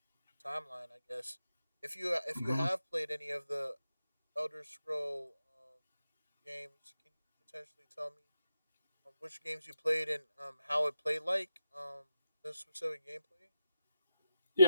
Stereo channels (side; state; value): both; inverted; correlation -0.87